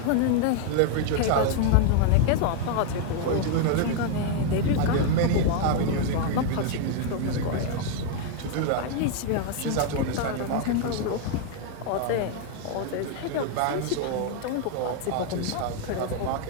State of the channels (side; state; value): both; different; correlation 0.00